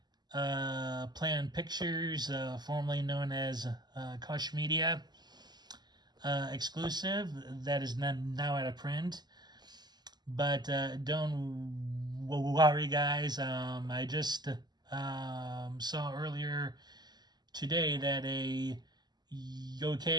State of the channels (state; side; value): late; left; 0.20 ms